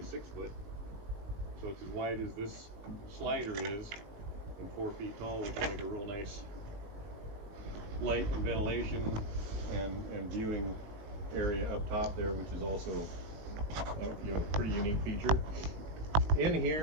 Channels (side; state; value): left; late; 19 ms